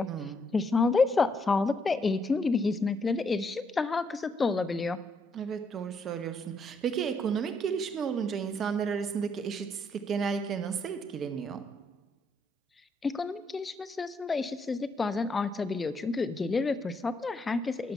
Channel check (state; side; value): normal; both; correlation 0.74